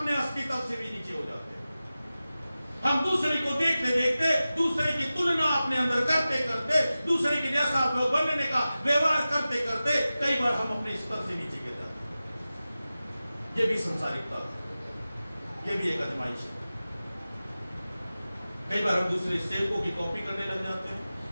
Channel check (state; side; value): inverted; both; correlation -0.95